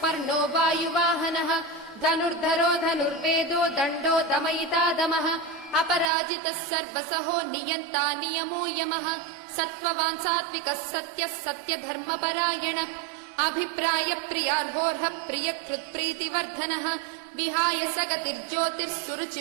वायुवाहनः धनुर्धरो धनुर्वेदो दण्डो दमयिता दमः अपराजितः सर्वसहो नियन्ता नियमो यमः सत्त्ववान् सात्विकः सत्यः सत्यधर्मपरायणः अभिप्रायप्रियार्होर्हः प्रियकृत्प्रीतिवर्धनः विहाय सगतिर्ज्योतिः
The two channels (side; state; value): left; drops out; at 6.1 s